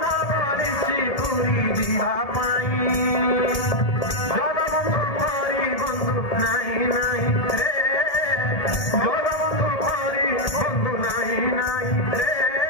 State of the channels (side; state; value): right; late; 1.8 ms